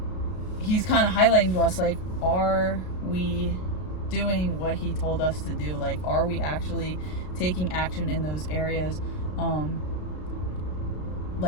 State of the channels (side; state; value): right; late; 33 ms